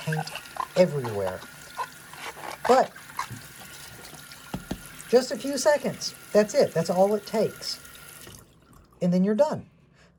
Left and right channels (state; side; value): identical; both; correlation 1.00